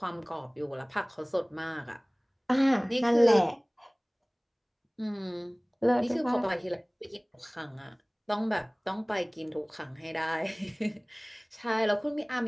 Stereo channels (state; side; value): identical; both; correlation 1.00